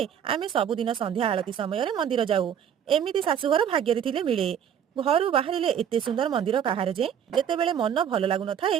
ଆମେ ସବୁଦିନ ସନ୍ଧ୍ୟା ଆଳତି ସମୟରେ ମନ୍ଦିର ଯାଉ। ଏମିତି ଶାଶୁଘର ଭାଗ୍ୟରେ ଥିଲେ ମିଳେ। ଘରୁ ବାହାରିଲେ ଏତେ ସୁନ୍ଦର ମନ୍ଦିର କାହାର ଯେ ଯେତେବେଳେ ମନ ଭଲ ଲାଗୁନଥାଏ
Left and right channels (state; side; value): quieter; left; 8.7 dB